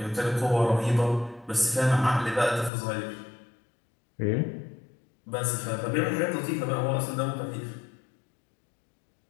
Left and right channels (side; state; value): right; drops out; at 2.7 s